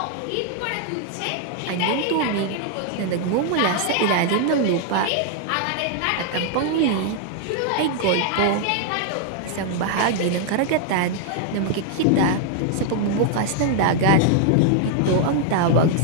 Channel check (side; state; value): both; different; correlation 0.00